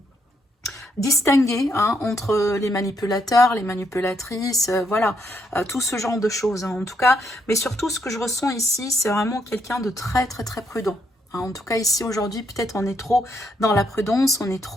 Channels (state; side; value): normal; both; correlation 0.75